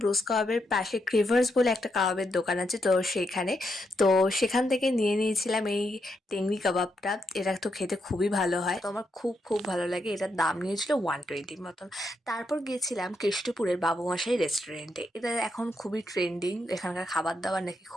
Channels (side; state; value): both; normal; correlation 0.81